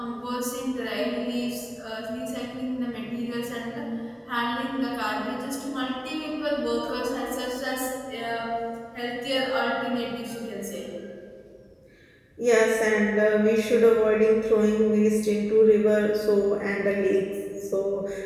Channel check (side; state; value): both; identical; correlation 1.00